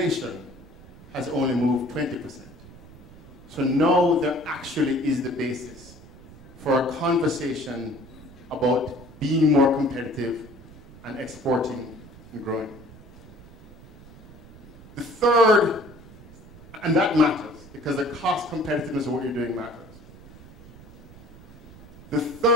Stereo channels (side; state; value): right; noise; rumble, 20 dB below the sound